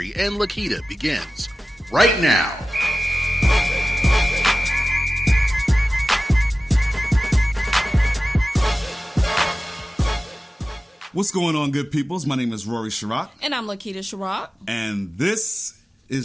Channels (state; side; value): normal; both; correlation 0.95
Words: and Lakita begins right now. What's going on, good peoples? My name is Rory Sharrock. And I'm Lakita Sharrock. And this